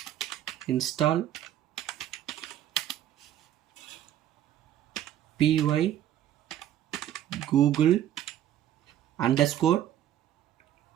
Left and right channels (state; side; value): quieter; left; 11.6 dB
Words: install py google _